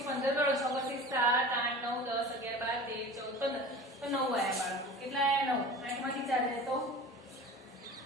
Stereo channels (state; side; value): normal; both; correlation 0.37